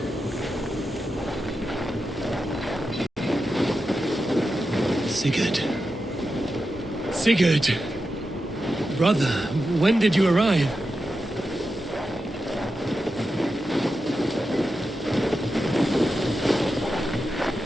Sigurd. Sigurd! Brother, when did you arrive?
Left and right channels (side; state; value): both; normal; correlation 0.89